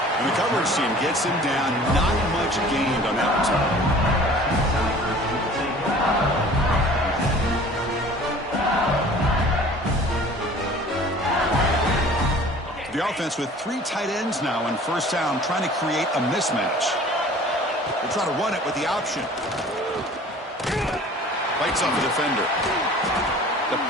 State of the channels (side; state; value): both; normal; correlation 0.47